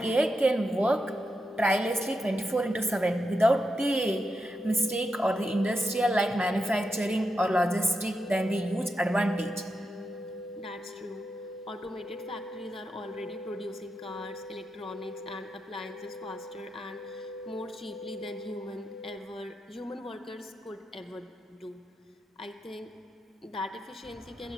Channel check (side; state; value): both; normal; correlation 0.86